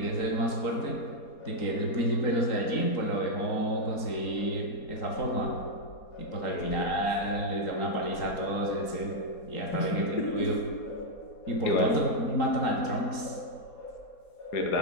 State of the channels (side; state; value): right; late; 4.2 ms